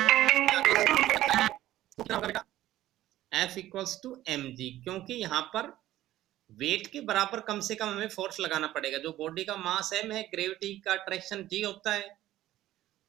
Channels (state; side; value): quieter; left; 14.4 dB